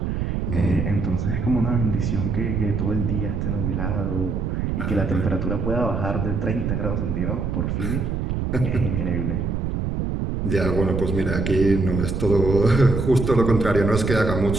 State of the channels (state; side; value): noise; right; rumble, 1 dB below the sound